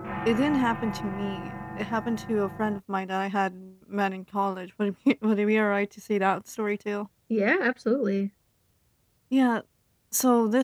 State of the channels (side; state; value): both; identical; correlation 1.00